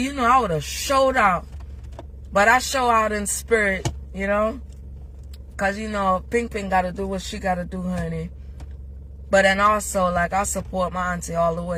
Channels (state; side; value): identical; both; correlation 1.00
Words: you know, I would have showed out. But I show out in spirit, you know. Because, you know, Ping Ping got to do what she got to do, honey. But then also, like, I support my auntie all the